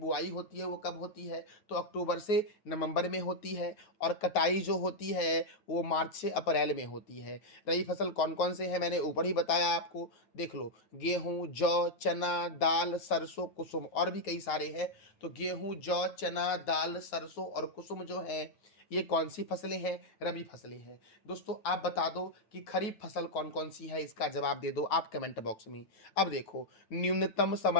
होती है वो कब होती है, तो अक्टूबर से नवंबर में होती है, और कटाई जो होती है वो मार्च से अप्रैल में होती है। रबी फसल कौन कौन से हैं मैंने ऊपर ही बताया आपको, देख लो, गेहूं, जौ, चना, दाल, सरसों, कुसुम, और भी कई सारे हैं। तो गेहूं, जौ, चना, दाल, सरसों और कुसुम जो है ये कौन सी फसलें हैं, रबी फसलें हैं दोस्तों। आप बता दो कि खरीफ फसल कौन कौन सी है, इसका जवाब दे दो आप कमेंट बॉक्स में। अब देखो, न्यूनतम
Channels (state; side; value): late; right; 9.4 ms